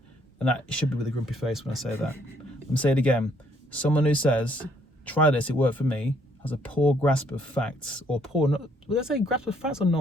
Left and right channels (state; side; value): normal; both; correlation 0.67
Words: And that should be with a grumpy face when I say that. I'm going to say it again. Someone who says, try this, it worked for me, has a poor grasp of facts, or did I say grasp of facts or